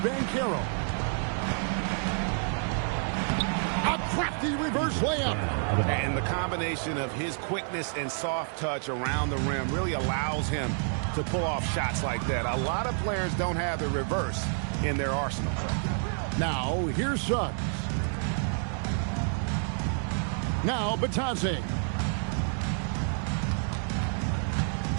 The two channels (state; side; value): silent; left; 59 dB below the other